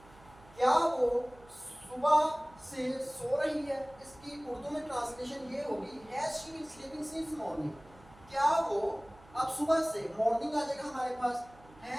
क्या वो सुबह से सो रही है। इसकी उर्दू में ट्रांसलेशन ये होगी, has she been sleeping since morning, क्या वो, अब सुबह से मॉर्निंग आ जाएगा हमारे पास,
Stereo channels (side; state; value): right; noise; hum, 24 dB below the sound